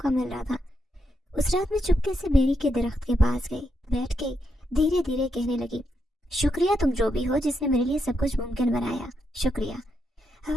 मिल रहा था। उस रात में चुपके से बेरी के दरख्त के पास गई, बैठ गई, धीरे धीरे कहने लगी, शुक्रिया तुम जो भी हो जिसने मेरे लिए सब कुछ मुमकिन बनाया, शुक्रिया।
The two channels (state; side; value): normal; both; correlation 0.81